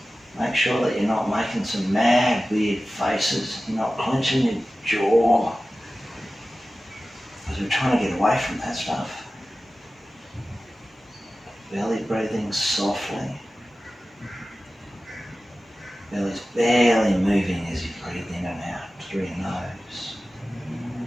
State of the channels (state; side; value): normal; both; correlation 0.95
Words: Make sure that you're not making some mad, weird faces. You're not clenching your jaw. Because we're trying to get away from that stuff. Belly breathing softly. Belly's barely moving as you breathe in and out through your nose.